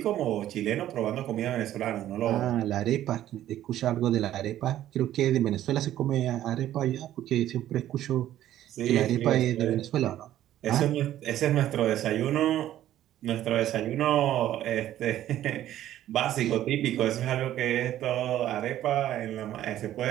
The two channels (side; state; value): left; quieter; 12.7 dB